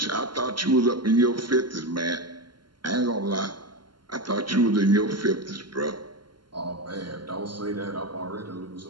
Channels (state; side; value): late; left; 0.72 ms